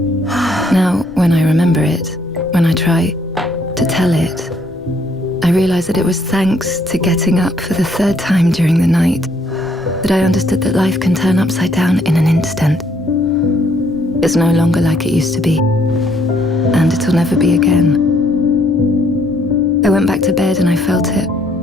Now, when I remember it, when I try to tell it, I realize that it was thanks to getting up for the third time during the night that I understood that life can turn upside down in an instant. It's no longer like it used to be, and it'll never be again. I went back to bed and I felt it.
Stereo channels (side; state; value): both; normal; correlation 0.67